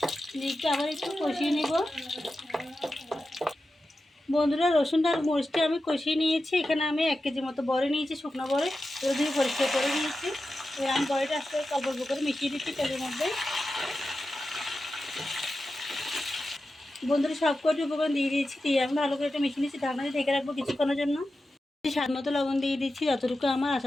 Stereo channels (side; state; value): both; normal; correlation 0.92